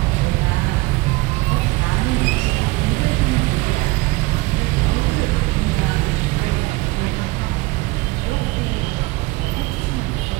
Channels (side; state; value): left; quieter; 22.0 dB